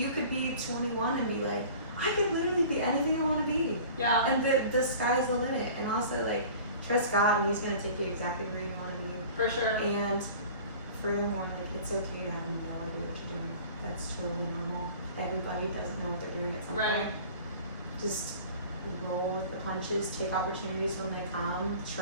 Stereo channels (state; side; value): inverted; both; correlation -0.44